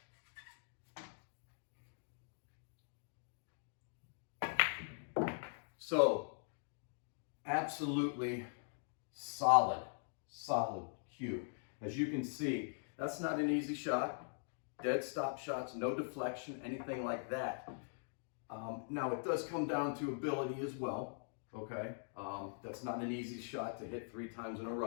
So, absolutely solid cue. As you can see, that's not an easy shot. Dead stop shots, no deflection, anything like that. Now, it does come down to ability as well, okay? That's not an easy shot to hit 3 times in a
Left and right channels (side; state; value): right; silent; digital silence